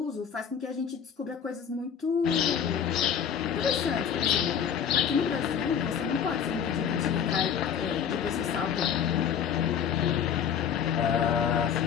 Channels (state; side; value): quieter; right; 8.0 dB